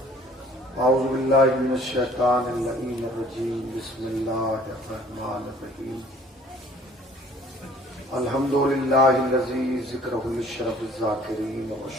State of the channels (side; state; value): both; normal; correlation 0.55